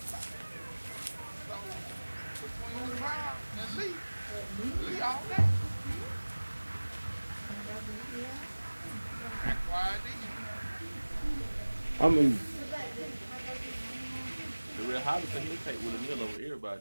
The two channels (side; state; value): both; inverted; correlation -1.00